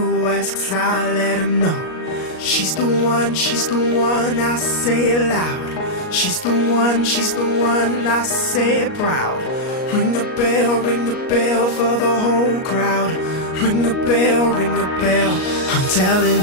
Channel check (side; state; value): right; late; 38 ms